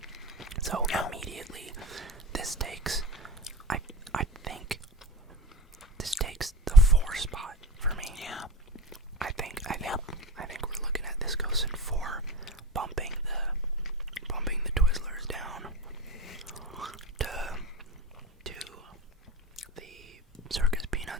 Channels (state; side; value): normal; both; correlation 0.31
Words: So immediately, this takes, I think,